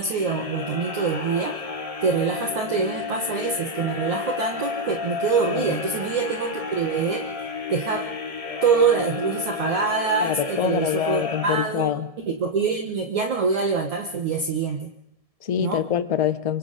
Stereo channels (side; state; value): left; late; 1.7 ms